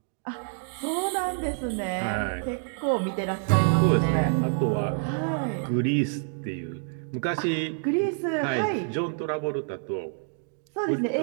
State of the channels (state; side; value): silent; left; digital silence